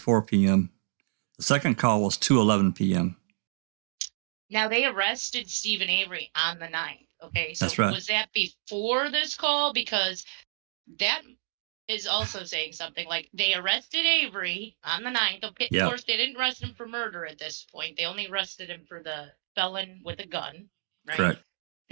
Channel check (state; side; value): silent; left; digital silence